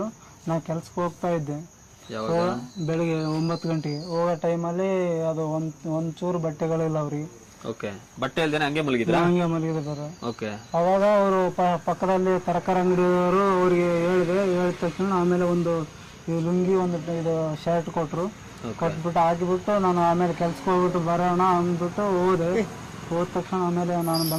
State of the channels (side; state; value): both; identical; correlation 1.00